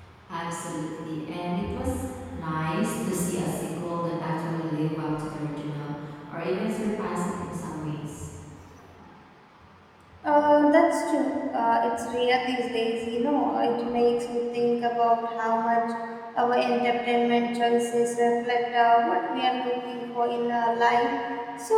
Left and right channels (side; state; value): both; identical; correlation 1.00